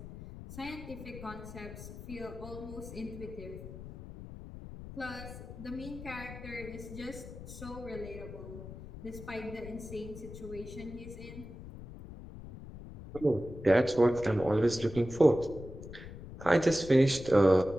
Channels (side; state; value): left; noise; rumble, 13 dB below the sound